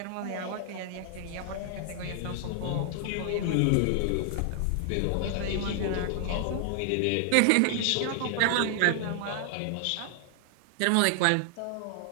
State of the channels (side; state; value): both; different; correlation 0.00